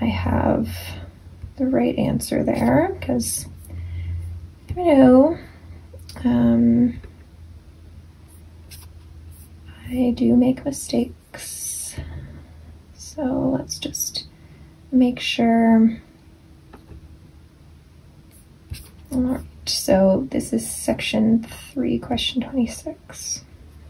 I have the right answer there, because you know, I do make mistakes. So let's just make sure. All right, so this is section 3, question 26.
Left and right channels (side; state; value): both; identical; correlation 1.00